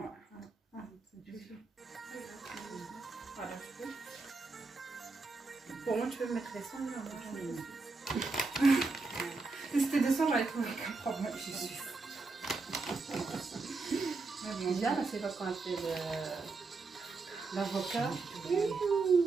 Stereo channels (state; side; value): quieter; left; 3.9 dB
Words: Ouais. C'est juste. Voilà, je peux. Pour moi, tu peux mettre les sons. Si c'était des sons, j'aurais trouvé aucun problème, je suis sûre. Bien, c'est pas quand elle fait l'avocat.